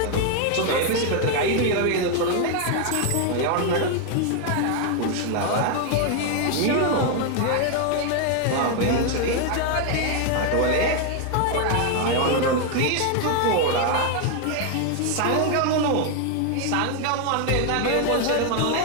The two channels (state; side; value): different; both; correlation 0.01